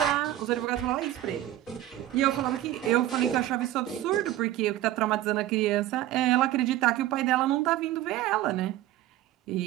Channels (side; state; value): left; quieter; 13.8 dB